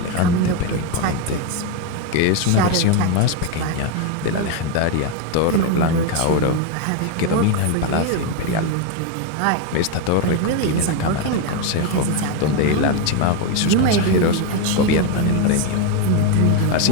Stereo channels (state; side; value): different; both; correlation 0.02